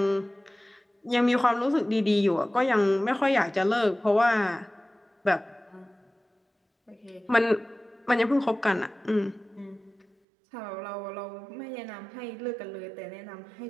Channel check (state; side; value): drops out; left; at 10.1 s